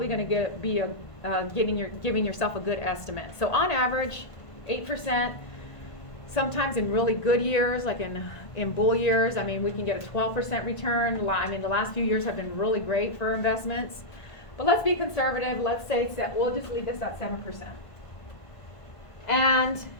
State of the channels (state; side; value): late; right; 1.5 ms